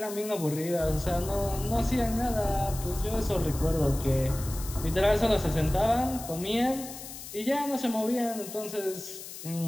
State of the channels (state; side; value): noise; left; hiss, 12 dB below the sound